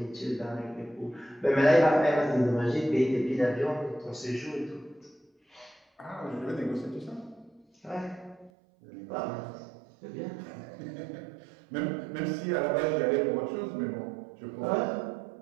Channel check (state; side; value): drops out; left; at 8.5 s